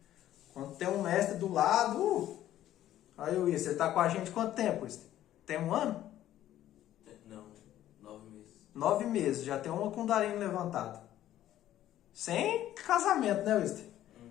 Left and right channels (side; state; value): right; quieter; 12.8 dB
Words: Quando tem um mestre do lado... Aí, Luiz, você tá com a gente quanto tempo, Luiz? Tem 1 ano? Não, 9 meses. 9 meses, já tem uma Kundalini levantada. Sem casamento, né, Luiz?